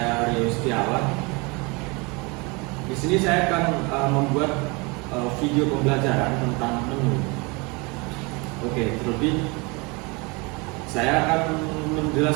Rio Setiawan. Di sini saya akan membuat video pembelajaran tentang menu. Oke, terlebih saya akan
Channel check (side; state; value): left; quieter; 27.8 dB